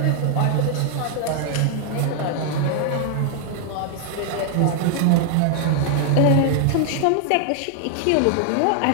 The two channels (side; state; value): both; different; correlation 0.00